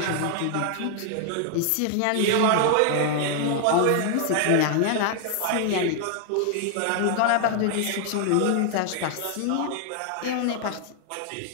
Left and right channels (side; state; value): both; different; correlation 0.00